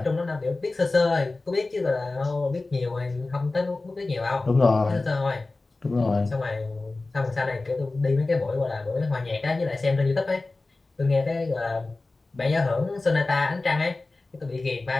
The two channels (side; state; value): right; quieter; 3.3 dB